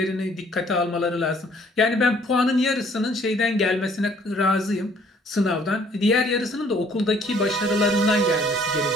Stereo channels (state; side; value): normal; both; correlation 0.60